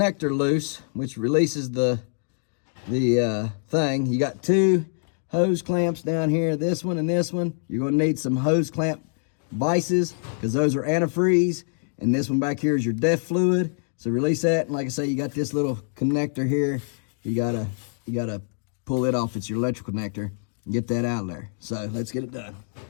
loose, which releases the thing. You got two hose clamps down here, this one and this one. You're gonna need some hose clamp vices because those are antifreeze, and this one back here is your DEF fluid. So release that, and like I say, you got this little connector here. You gotta pull it off. It's your electrical connector and get that out of there. So let's get it done.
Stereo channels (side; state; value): right; silent; 62 dB below the other